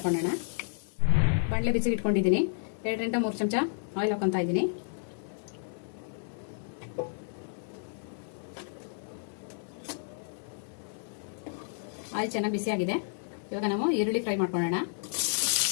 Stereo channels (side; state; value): right; silent; 57 dB below the other